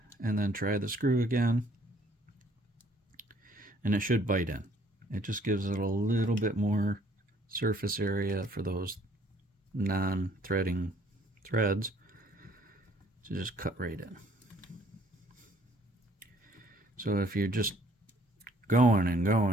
and then try the screw again, and it should bite in. It just gives it a little bit more surface area for those non-threading threads to just cut right in. So if you're just going and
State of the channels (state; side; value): normal; both; correlation 0.61